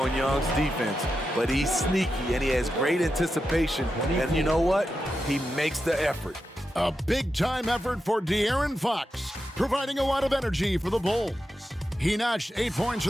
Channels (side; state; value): both; normal; correlation 0.89